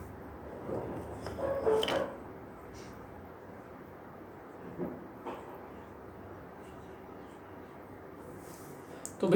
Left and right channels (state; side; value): identical; both; correlation 1.00